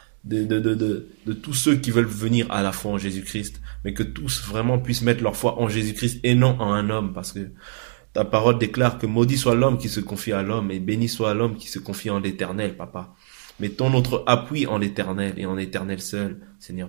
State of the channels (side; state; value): left; silent; digital silence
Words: de tous ceux qui veulent venir à la foi en Jésus-Christ, mais que tous vraiment puissent mettre leur foi en Jésus-Christ et non en un homme, parce que ta parole déclare que maudit soit l'homme qui se confie à l'homme et béni soit l'homme qui se confie en l'Éternel, Papa. Mettons notre appui en l'Éternel et en l'Éternel seul,